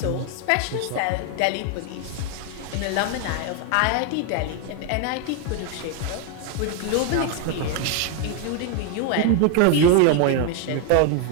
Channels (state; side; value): different; both; correlation 0.01